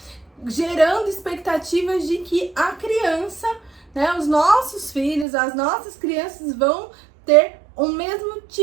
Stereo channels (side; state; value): left; drops out; at 5.2 s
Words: gerando expectativas de que a criança, né, os nossos filhos, as nossas crianças vão ter o mesmo